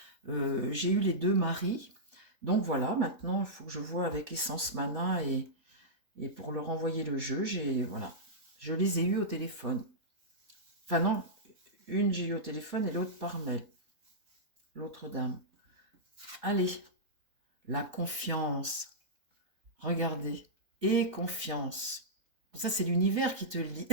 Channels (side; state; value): left; late; 3.8 ms